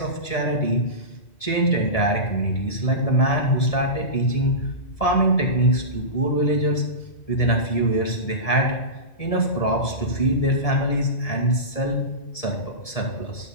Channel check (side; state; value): right; late; 1.7 ms